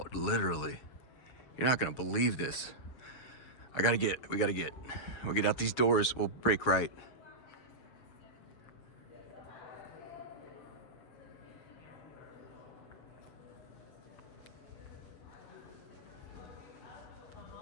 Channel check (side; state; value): right; late; 7.2 ms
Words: literally. You're not gonna believe this. We'll get out these doors. We'll break right.